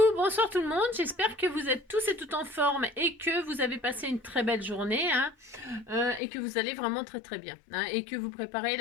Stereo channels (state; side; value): drops out; right; at 6.2 s